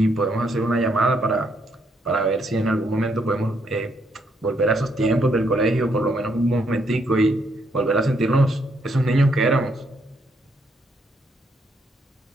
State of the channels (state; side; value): normal; both; correlation 0.74